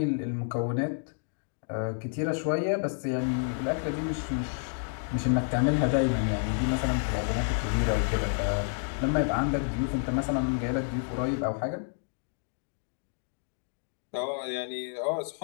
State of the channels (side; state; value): right; silent; 58 dB below the other